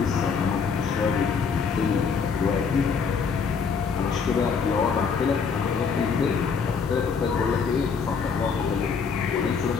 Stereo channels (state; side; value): quieter; right; 5.8 dB